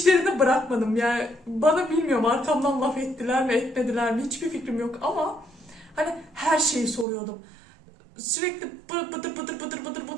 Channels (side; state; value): left; drops out; at 7.1 s